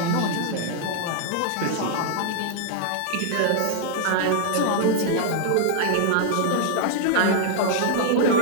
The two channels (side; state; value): both; different; correlation -0.01